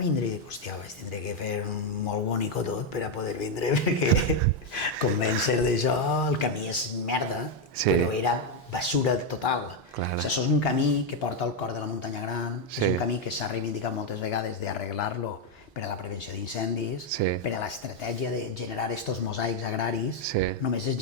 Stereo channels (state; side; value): normal; both; correlation 0.03